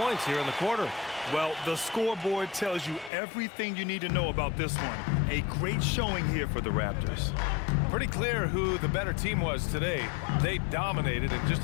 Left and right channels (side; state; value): right; drops out; at 3.1 s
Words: here in the quarter. Well, the scoreboard tells you everything you need to know about this one. A great showing here for the Raptors. Pretty clear who the better team was today. They dominated in just